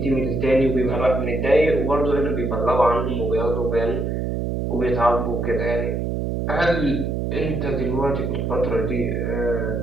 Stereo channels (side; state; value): right; noise; hum, 1 dB below the sound